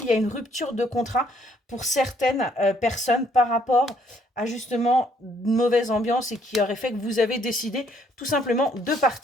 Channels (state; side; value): normal; both; correlation 0.66